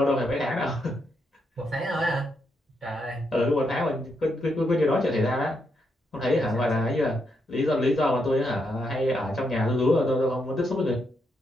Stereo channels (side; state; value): both; normal; correlation 0.80